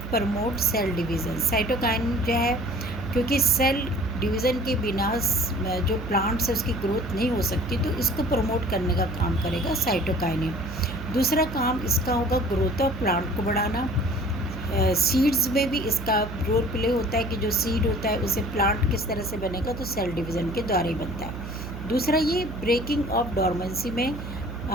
promote cell division. Cytokinin जो है, क्योंकि सेल डिवीज़न के बिना जो प्लांट्स है उसकी ग्रोथ नहीं हो सकती, तो इसको प्रमोट करने का काम करेगा साइटोकाइनिन। दूसरा काम इसका होगा ग्रोथ ऑफ प्लांट को बढ़ाना। सीड्स में भी इसका रोल प्ले होता है कि जो सीड होता है उसे प्लांट किस तरह से बनेगा, तो सेल डिवीज़न के द्वारा ही बनता है। दूसरा ये ब्रेकिंग ऑफ डॉर्मेंसी में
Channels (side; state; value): right; noise; hum, 9 dB below the sound